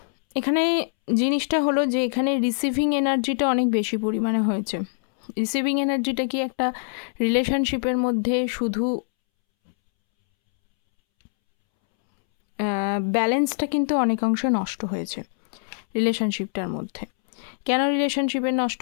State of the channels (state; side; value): silent; right; 63 dB below the other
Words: এখানে জিনিসটা হলো যে এখানে রিসিভিং এনার্জিটা অনেক বেশি পরিমাণে হয়েছে। রিসিভিং এনার্জিটা কি একটা রিলেশনশিপের মধ্যে শুধু ব্যালেন্সটা কিন্তু অনেকাংশে নষ্ট হয়েছে রিলেশনশিপটার মধ্যে। কেন রিলেশনশিপের নষ্ট